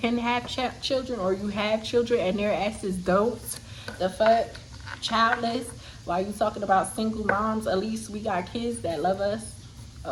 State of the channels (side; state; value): both; identical; correlation 1.00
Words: have children or you have children and their asses don't. The fuck, childless. While you talking about single moms, at least we got kids that love us.